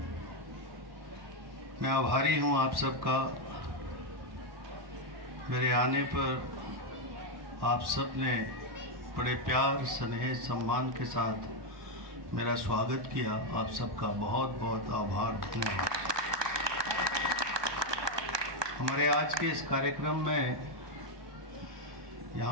मैं आभारी हूं आप सबका। मेरे आने पर आप सब ने बड़े प्यार स्नेह सम्मान के साथ मेरा स्वागत किया। आप सबका बहुत बहुत आभार, धन्यवाद। हमारे आज के इस कार्यक्रम में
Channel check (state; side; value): late; left; 1.2 ms